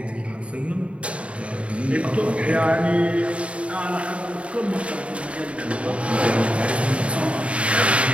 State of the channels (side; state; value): left; late; 0.062 ms